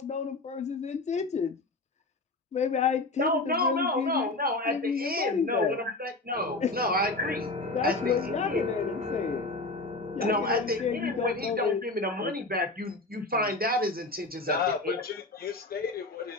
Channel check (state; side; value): quieter; right; 3.1 dB